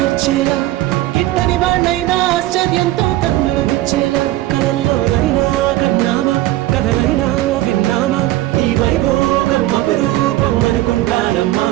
పుట్టని వాళ్ళైనా ఆశ్చర్యంతో కన్నులు విచ్చేలా కలల్లోనైనా కన్నామా కథలైనా విన్నామా ఈ వైభోగం అపురూపం అనుకుంటానమ్మా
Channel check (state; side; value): quieter; left; 16.0 dB